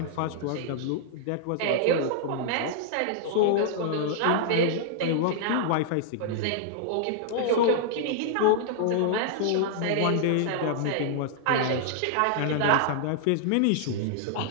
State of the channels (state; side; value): different; both; correlation -0.01